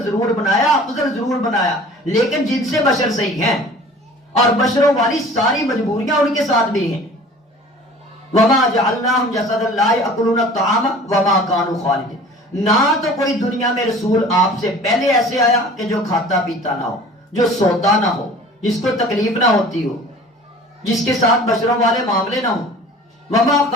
ضرور بنایا، افضل ضرور بنایا، لیکن جن سے بشر صحیح ہیں اور بشروں والی ساری مجبوریاں ان کے ساتھ بھی ہیں۔ وما جعلناہم جسدا لا یأکلون الطعام وما كانوا خالدین۔ نہ تو کوئی دنیا میں رسول آپ سے پہلے ایسے آیا کہ جو کھاتا پیتا نہ ہو، جو سوتا نہ ہو، جس کو تکلیف نہ ہوتی ہو، جس کے ساتھ بشروں والے معاملے نہ ہوں۔ وما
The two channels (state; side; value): normal; both; correlation 0.45